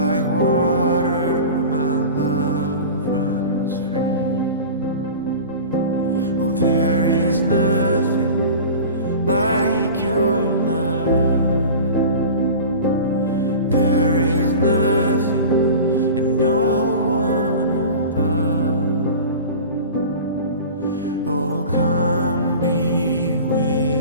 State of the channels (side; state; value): both; inverted; correlation -0.36